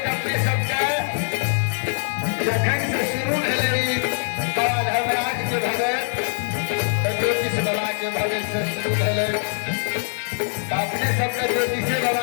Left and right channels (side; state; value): right; silent; digital silence